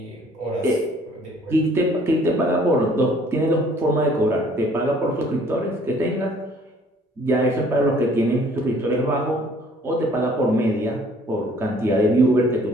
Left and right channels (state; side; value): normal; both; correlation 0.57